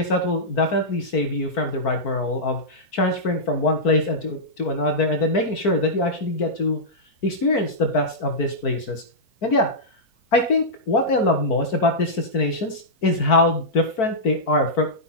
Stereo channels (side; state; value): right; late; 4.5 ms